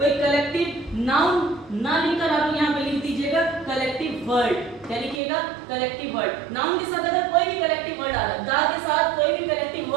कलेक्टिव नाउन ना लिखकर आप यहाँ पे लिख दीजिएगा कलेक्टिव वर्ड। क्या लिखिएगा? Collective word. नाउन के साथ अगर कोई भी कलेक्टिव वर्ड आ रहा है, द के साथ कोई भी कलेक्टिव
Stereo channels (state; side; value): drops out; left; at 5.2 s